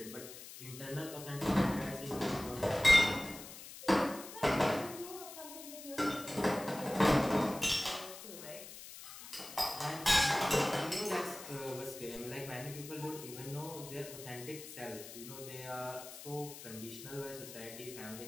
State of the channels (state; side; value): noise; left; hiss, 13 dB below the sound